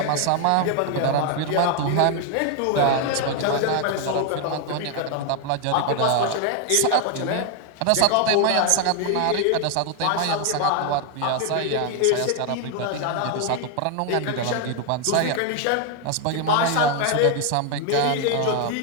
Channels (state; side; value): different; both; correlation 0.01